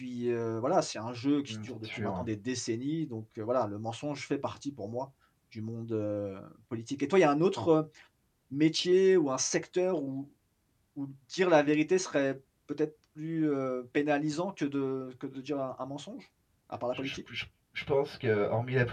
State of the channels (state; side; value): identical; both; correlation 1.00